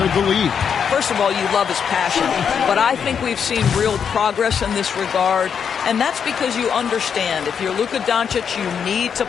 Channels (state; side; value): quieter; right; 7.2 dB